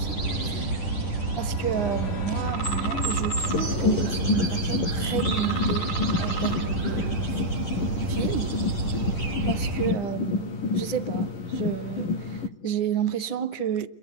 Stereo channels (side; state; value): right; late; 10 ms